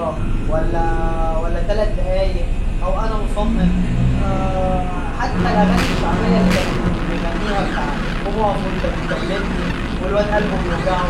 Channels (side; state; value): both; identical; correlation 1.00